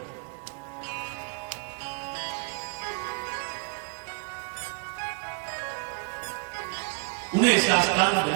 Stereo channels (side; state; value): left; quieter; 36.2 dB